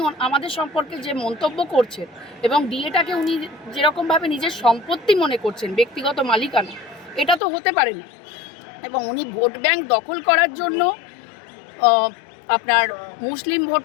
আমাদের সম্পর্কে যে মন্তব্য করছেন, এবং ডিএটাকে উনি যেরকমভাবে নিজের সম্পত্তি মনে করছেন, ব্যক্তিগত মালিকানা, এটা তো হতে পারে না। এবং উনি ভোট ব্যাংক দখল করার জন্য, আপনার মুসলিম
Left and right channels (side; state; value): right; drops out; at 7.4 s